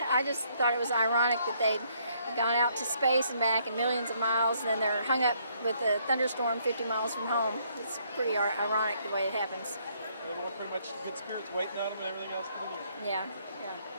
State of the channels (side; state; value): both; inverted; correlation -0.69